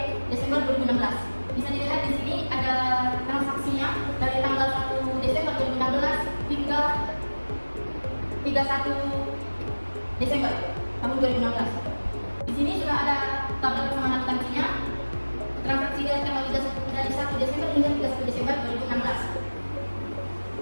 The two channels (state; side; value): inverted; both; correlation -1.00